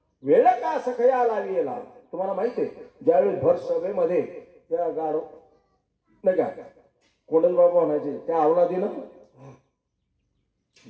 वेळ का सखया लावीला. तुम्हाला माहिती आहे ज्यावेळी भर सभेमध्ये त्या गाढ नाही का कोंडल बाबा म्हणायचे त्या अवलादीनं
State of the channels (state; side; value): identical; both; correlation 1.00